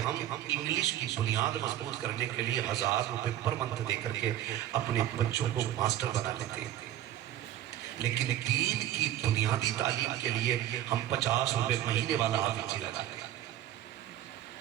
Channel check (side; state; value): left; quieter; 12.4 dB